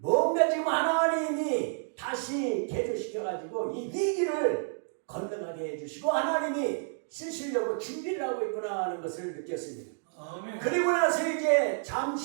지금 하나님이 다시 개조시켜가지고 이 위기를 건너가게 해주시고 하나님이 쓰시려고 준비를 하고 있구나 하는 것을 느꼈습니다. 그리고 나서 이제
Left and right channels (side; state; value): left; silent; digital silence